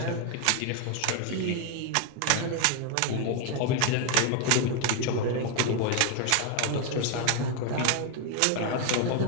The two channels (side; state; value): both; different; correlation 0.01